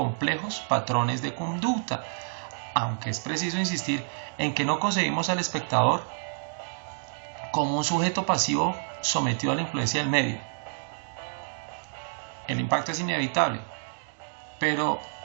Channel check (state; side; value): silent; left; digital silence